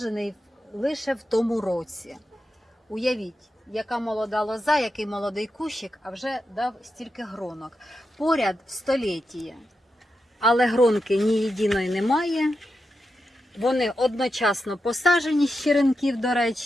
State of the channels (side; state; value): both; normal; correlation 0.88